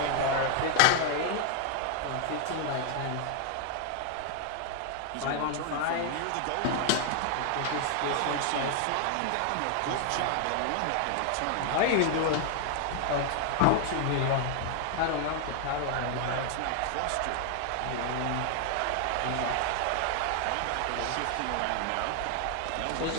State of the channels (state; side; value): different; both; correlation 0.00